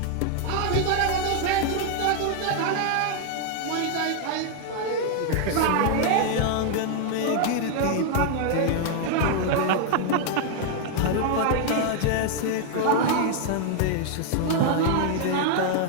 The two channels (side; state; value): both; different; correlation 0.00